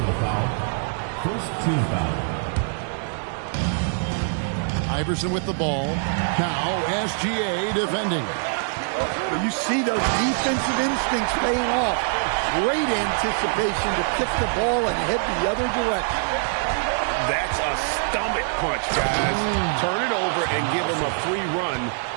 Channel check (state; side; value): silent; left; 62 dB below the other